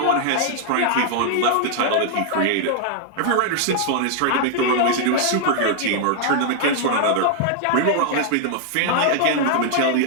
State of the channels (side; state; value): both; different; correlation 0.00